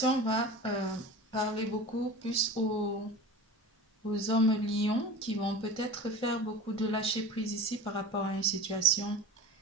va parler beaucoup plus aux hommes lions qui vont peut-être faire beaucoup de lâcher prise ici par rapport à une situation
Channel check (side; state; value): both; normal; correlation 0.33